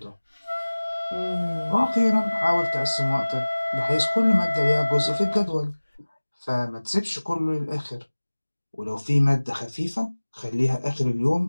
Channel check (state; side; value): inverted; both; correlation -1.00